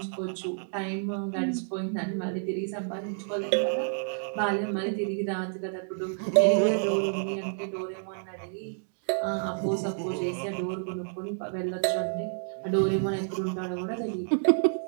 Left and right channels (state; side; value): silent; left; digital silence